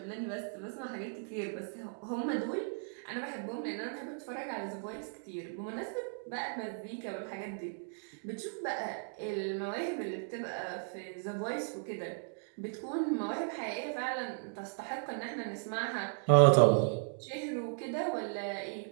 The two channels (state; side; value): silent; left; digital silence